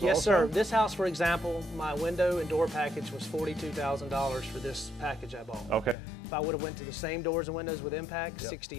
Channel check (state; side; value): drops out; right; at 6.0 s